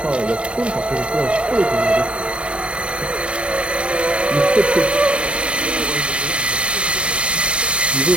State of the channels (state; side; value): late; left; 0.057 ms